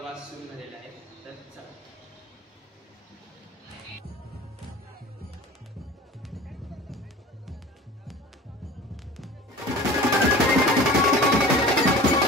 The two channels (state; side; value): normal; both; correlation 0.40